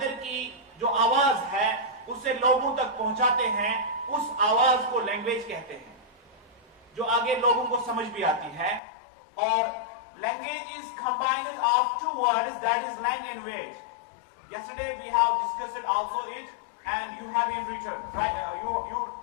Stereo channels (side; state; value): right; drops out; at 8.8 s